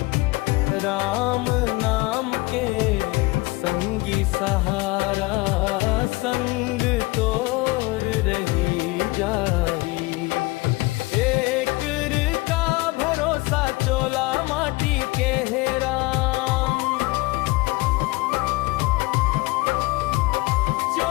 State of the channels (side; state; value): right; quieter; 22.9 dB